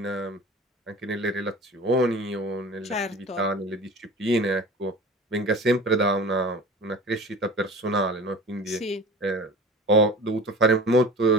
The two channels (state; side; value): normal; both; correlation 0.38